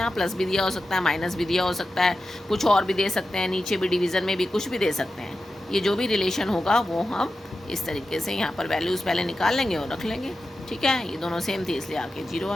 प्लस भी दिया हो सकता है, माइनस भी दिया हो सकता है, कुछ और भी दे सकते हैं, नीचे भी डिवीज़न में भी कुछ भी दे सकते हैं। ये जो भी रिलेशन होगा वो हम इस तरीके से यहाँ पर वैल्यूज़ पहले निकाल लेंगे और रख लेंगे। ठीक है, ये दोनों सेम थी इसलिए आके 0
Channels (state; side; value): normal; both; correlation 0.92